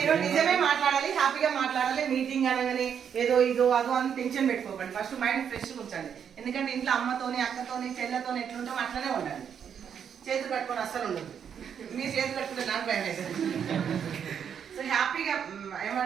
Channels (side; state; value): left; quieter; 7.9 dB